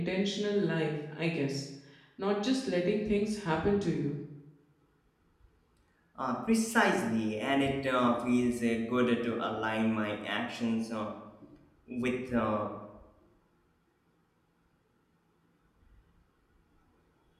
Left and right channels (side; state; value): both; identical; correlation 1.00